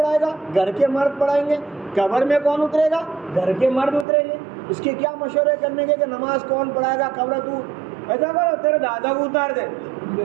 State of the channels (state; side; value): drops out; left; at 4.0 s